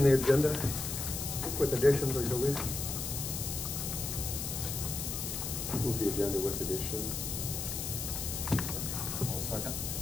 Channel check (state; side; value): noise; left; hiss, 4 dB below the sound